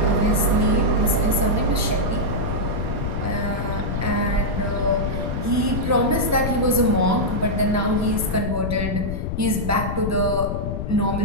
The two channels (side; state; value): left; noise; rumble, 3 dB below the sound